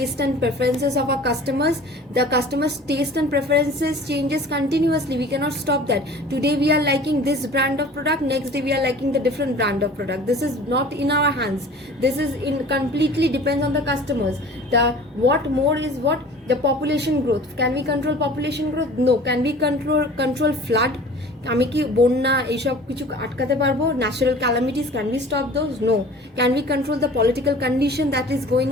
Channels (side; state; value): both; normal; correlation 0.44